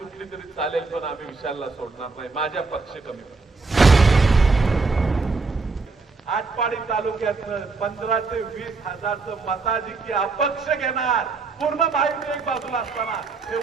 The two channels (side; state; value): left; quieter; 4.1 dB